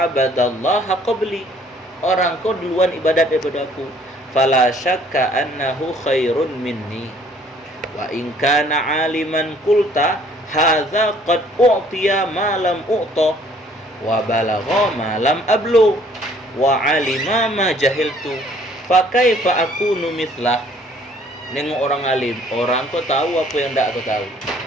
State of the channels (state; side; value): normal; both; correlation 0.59